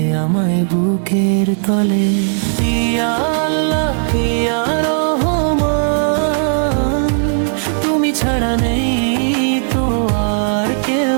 আমায় বুকের তলে। ইয়া আল্লাহ ইয়া রহমান, তুমি ছাড়া নেই তো আর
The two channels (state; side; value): silent; left; digital silence